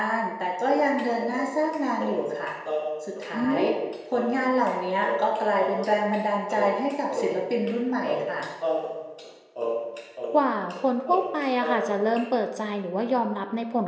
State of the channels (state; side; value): identical; both; correlation 1.00